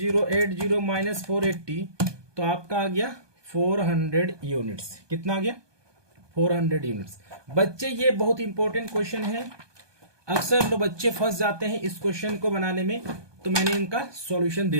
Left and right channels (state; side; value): late; left; 1.2 ms